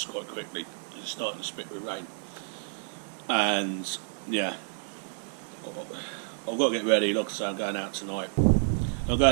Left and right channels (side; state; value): left; silent; digital silence